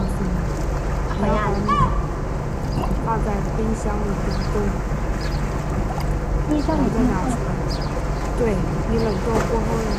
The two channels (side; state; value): both; identical; correlation 1.00